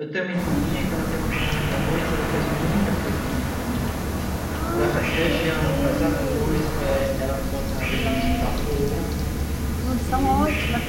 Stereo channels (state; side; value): identical; both; correlation 1.00